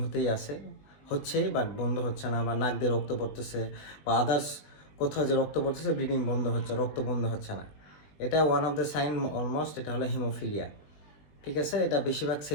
হচ্ছে বাট বন্ধ হচ্ছে না, বা নাক দিয়ে রক্ত পড়তেছে, বা আদার্স কোথাও যে রক্ত পড়তেছে, ব্লিডিং বন্ধ হচ্ছে, রক্ত বন্ধ হচ্ছে না। এটা one of the sign almost, এটা হলো হিমোফিলিয়া। ঠিক আছে, এটা বেশিরভাগ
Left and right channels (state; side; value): late; right; 20 ms